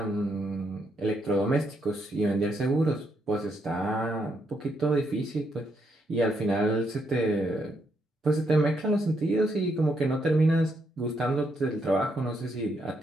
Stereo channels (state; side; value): normal; both; correlation 0.77